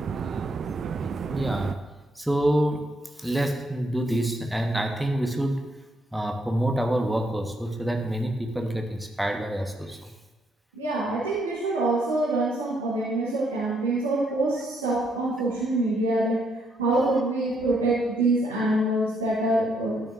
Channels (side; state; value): both; normal; correlation 0.74